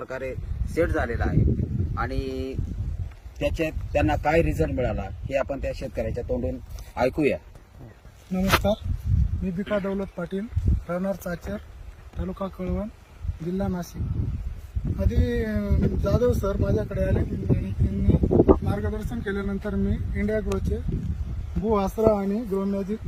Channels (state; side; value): identical; both; correlation 1.00